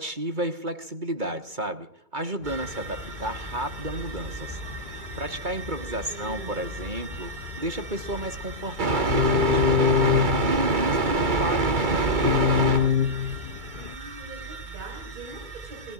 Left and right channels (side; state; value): left; late; 2.2 ms